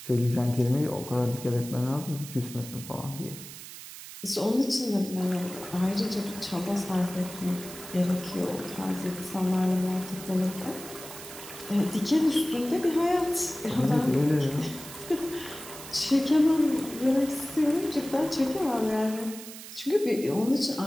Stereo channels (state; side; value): noise; right; hiss, 13 dB below the sound